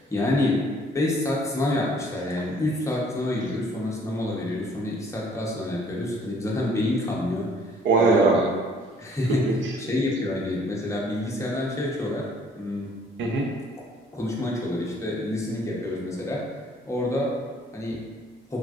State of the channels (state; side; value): normal; both; correlation 0.59